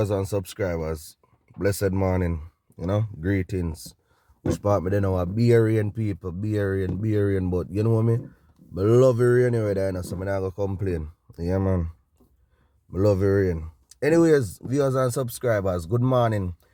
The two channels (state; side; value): identical; both; correlation 1.00